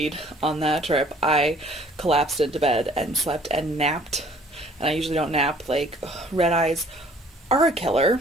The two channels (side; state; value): both; normal; correlation 0.56